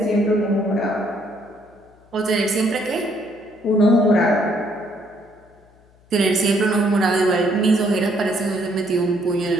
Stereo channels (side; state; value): left; noise; hum, 30 dB below the sound